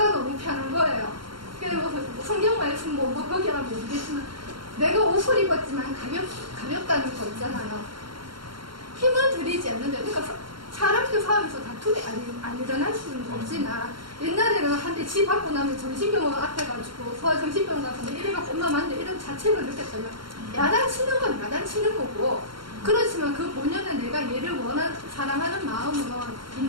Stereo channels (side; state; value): left; late; 0.73 ms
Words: 너무 편한 거예요. 그리고 성경 말씀 뭐 거기라 모르겠지만 내가 옷을 입었지만 가볍다는 거 있잖아요. 힘을 들이지 않는데, 그러니까 사람들 싸움에서 다툼이 안 일어날 수는 없지만 옛날에는 한때 집 받고 나면 정신병원 앞에 가지고 소아정신병원 가서 이래갖고 엄마 맞네 이런 자책을 느꼈어요. 야단치는 건 야단치는 거고, 그렇지만 그 본연에 내가 얘를 사랑하는 마음은